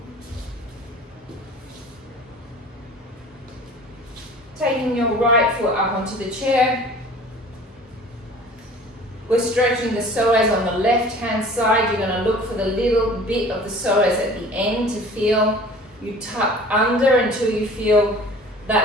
Taking your right foot up onto the chair. We're stretching the psoas on the left hand side. You're going to look for the little bit of the psoas at the end to feel. You tuck under until you feel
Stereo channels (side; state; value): both; normal; correlation 0.45